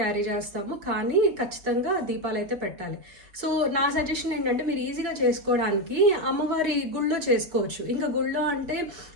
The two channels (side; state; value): left; late; 5.2 ms